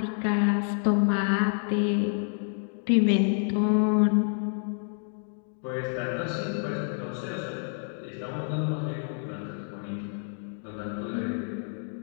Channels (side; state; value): right; silent; 59 dB below the other